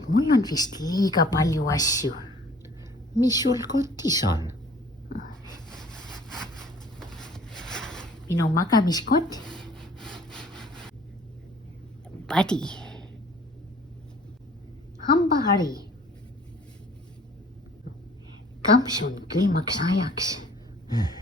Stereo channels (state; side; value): normal; both; correlation 0.52